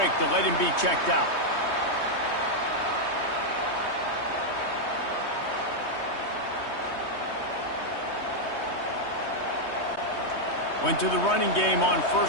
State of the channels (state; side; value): late; right; 3.2 ms